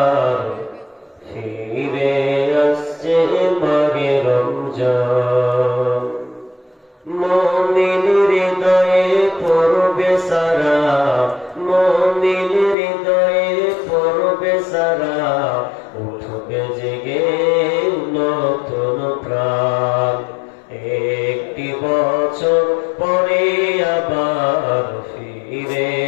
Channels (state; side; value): drops out; right; at 12.8 s